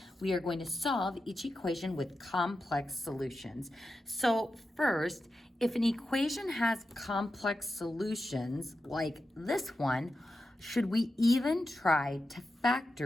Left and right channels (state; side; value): normal; both; correlation 0.90